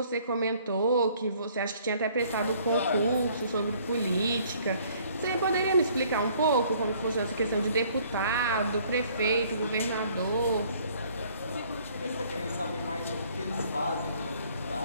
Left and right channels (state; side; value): inverted; both; correlation -0.59